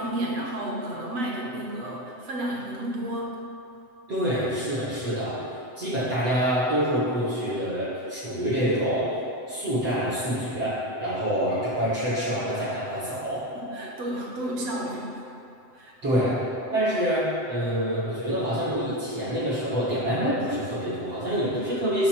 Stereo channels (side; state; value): left; late; 7.8 ms